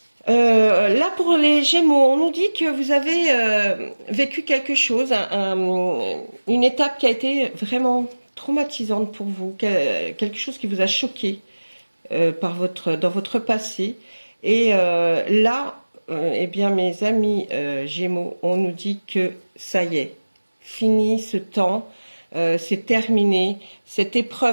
là pour les Gémeaux, on nous dit que vous avez vécu quelque chose, une étape qui a été vraiment traumatisante pour vous, quelque chose qui vous a choqué dans votre passé. Et là, eh bien mes amis Gémeaux, on nous dit que ça y est, fini ce temps. C'est terminé. Cette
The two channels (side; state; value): both; inverted; correlation -1.00